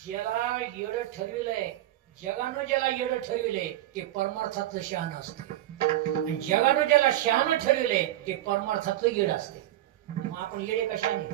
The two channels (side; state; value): left; quieter; 14.4 dB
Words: ज्याला येडं ठरविलंय, जगानं ज्याला येडं ठरविलंय ते परमार्थातलं शहाणं असते. जगानं ज्याला शहाणं ठरविलंय ते परमार्थातलं येडं असते. मग आपण येडे